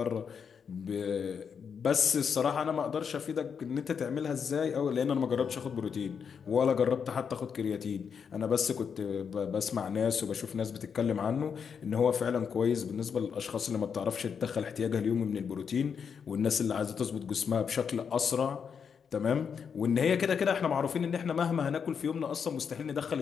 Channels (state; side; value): quieter; right; 6.7 dB